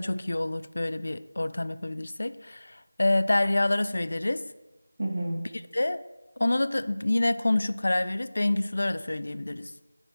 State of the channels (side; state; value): both; inverted; correlation -1.00